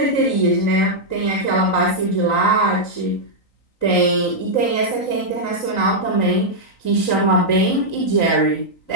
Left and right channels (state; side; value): late; right; 3.9 ms